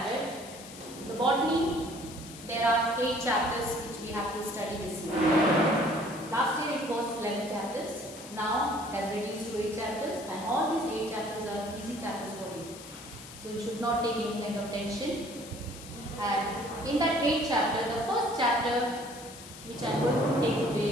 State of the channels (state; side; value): noise; left; hiss, 15 dB below the sound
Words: the botany, there are 8 chapters which we have to study this year. Last year it was 11 chapters. Now it has reduced to 8 chapters, and all these 8 chapters are easy chapters for you. So you should not take any kind of tension. And in that 8th chapter, the first chapter which I am going to take today